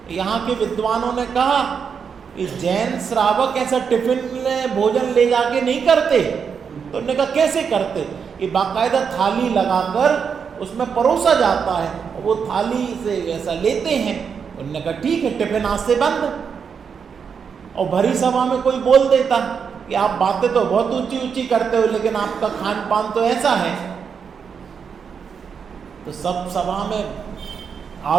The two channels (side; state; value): left; quieter; 6.5 dB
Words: यहाँ के विद्वानों ने कहा कि जैन श्रावक ऐसा टिफिन में भोजन ले जाके नहीं करते, तो उन्होंने कहा कैसे करते, कि बाकायदा थाली लगाकर उसमें परोसा जाता है, और वो थाली से ऐसा लेते हैं। उन्होंने कहा ठीक है, टिफिन आज से बंद। और भरी सभा में कोई बोल देता कि आप बातें तो बहुत ऊंची ऊंची करते हो, लेकिन आपका खान पान तो ऐसा है, तो सब सभा में